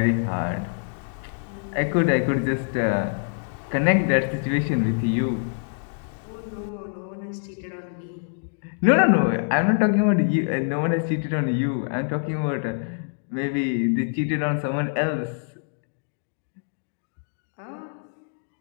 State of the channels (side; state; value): right; silent; digital silence